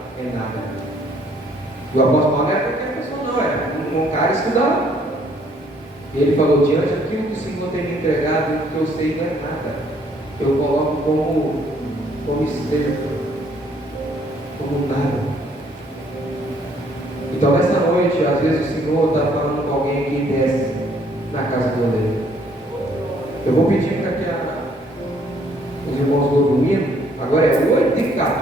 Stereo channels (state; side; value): normal; both; correlation 0.64